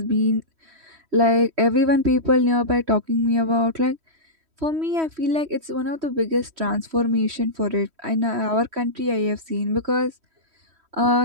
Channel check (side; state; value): left; late; 3.1 ms